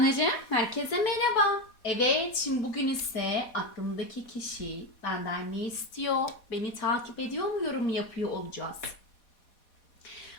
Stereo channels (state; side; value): late; right; 4.2 ms